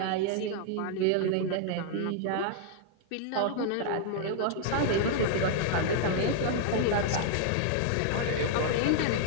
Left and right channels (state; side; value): different; both; correlation -0.01